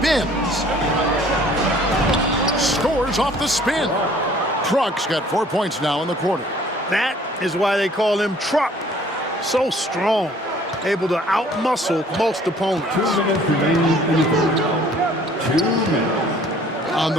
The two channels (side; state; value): both; normal; correlation 0.55